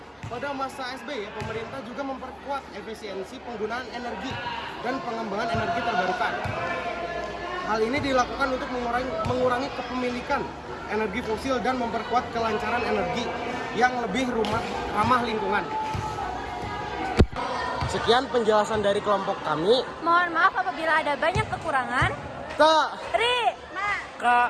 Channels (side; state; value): both; identical; correlation 1.00